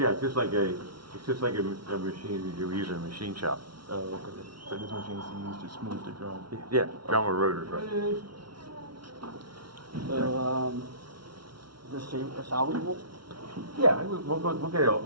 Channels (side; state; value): left; late; 0.74 ms